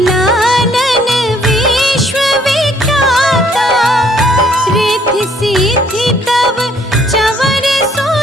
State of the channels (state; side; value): normal; both; correlation 0.63